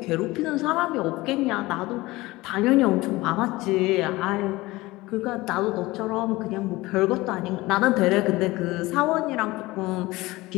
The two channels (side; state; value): right; quieter; 20.0 dB